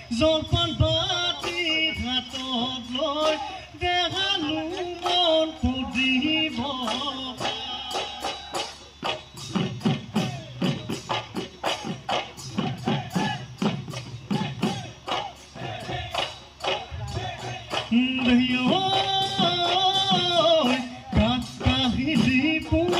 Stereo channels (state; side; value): identical; both; correlation 1.00